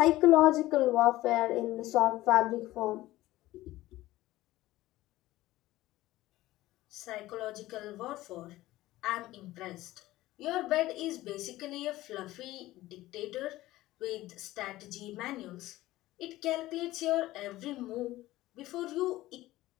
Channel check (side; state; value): right; quieter; 16.8 dB